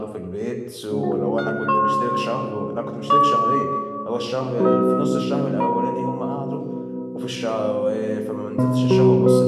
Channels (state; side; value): identical; both; correlation 1.00